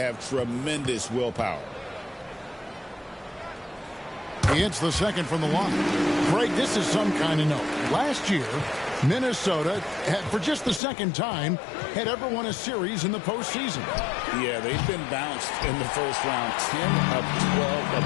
tremendous willpower. He hits the second from the line. Greg, this is some kind of note. Last year, Minnesota, for just the second time, had ever won a series in the postseason. Yeah, they've been bounced in the first round 10 of 12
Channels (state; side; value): drops out; right; at 10.8 s